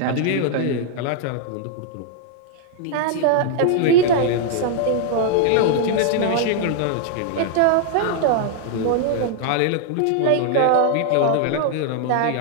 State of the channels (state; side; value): different; both; correlation 0.00